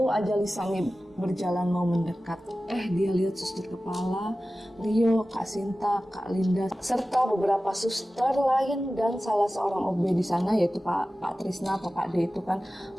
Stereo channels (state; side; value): normal; both; correlation 0.96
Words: aja Lisa nih berjalan mau mendekat, dia lihat suster kepala, Rio, Kak Sinta, Kak Linda, serta beberapa suster lain dan salah seorang OB di sana yaitu Pak Trisna atau Pak D itu kan